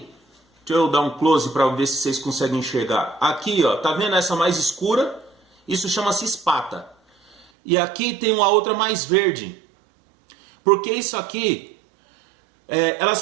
deixa eu dar um close para ver se vocês conseguem enxergar. Aqui, ó, tá vendo essa mais escura? Isso chama-se espata. E aqui tem uma outra mais verde. Porque isso aqui,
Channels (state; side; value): drops out; left; at 7.5 s